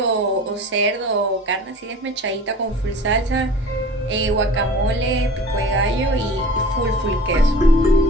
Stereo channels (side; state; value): both; normal; correlation 0.41